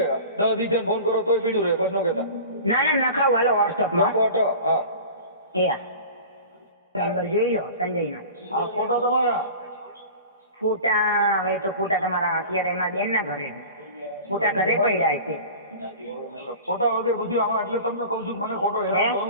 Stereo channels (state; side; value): inverted; both; correlation -0.38